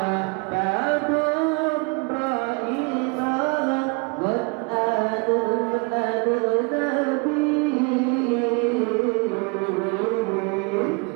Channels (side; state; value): left; quieter; 31.2 dB